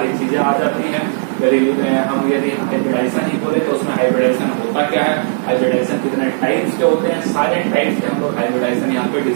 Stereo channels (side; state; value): left; silent; 63 dB below the other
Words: चीजें आ जाती हैं। यदि हाइब्रिडाइजेशन ही बोले तो उसमें हाइब्रिडाइजेशन होता क्या है, हाइब्रिडाइजेशन कितने टाइप्स के होते हैं, सारे टाइप्स के हम लोग हाइब्रिडाइजेशन यहाँ पे